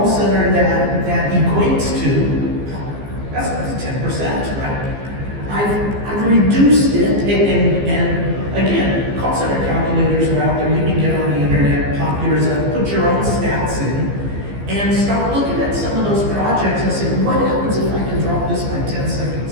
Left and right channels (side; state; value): left; late; 15 ms